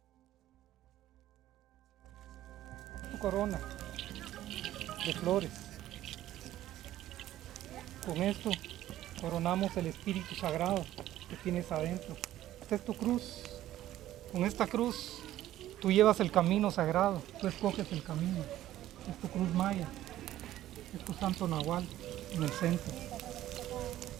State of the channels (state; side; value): quieter; left; 13.7 dB